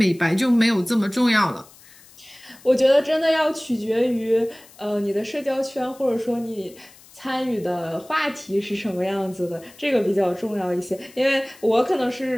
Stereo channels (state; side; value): noise; left; hiss, 24 dB below the sound